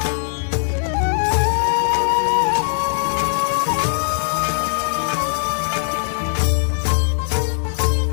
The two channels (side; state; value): right; silent; digital silence